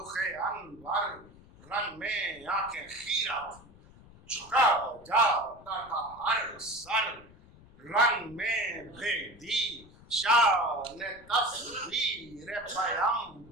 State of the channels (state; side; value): noise; left; rumble, 23 dB below the sound